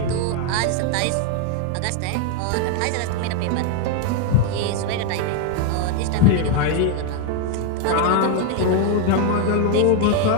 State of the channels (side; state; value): both; different; correlation 0.00